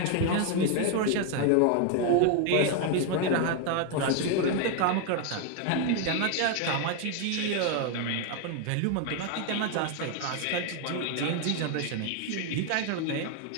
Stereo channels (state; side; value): different; both; correlation 0.01